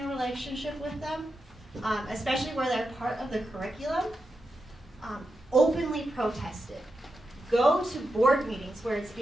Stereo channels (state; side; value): normal; both; correlation 0.88